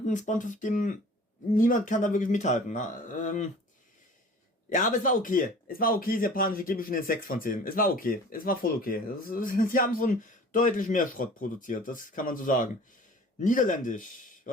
SpongeBob-Stimmen, niemand kann da wirklich mithalten. Na, ja, aber es war okay. Es war okay, das Japanische gebe ich schon eine 6 von 10. Es war okay. Es war voll okay. Sie haben schon deutlich mehr Schrott produziert, das kann man so sagen. Niederländisch.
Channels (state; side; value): normal; both; correlation 0.45